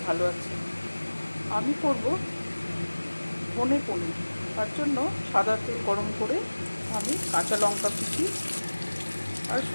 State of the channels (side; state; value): both; inverted; correlation -1.00